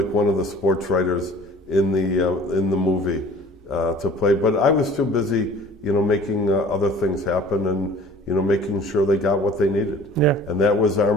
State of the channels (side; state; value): both; normal; correlation 0.48